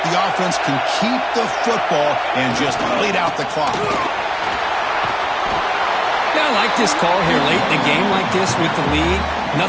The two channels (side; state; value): both; identical; correlation 1.00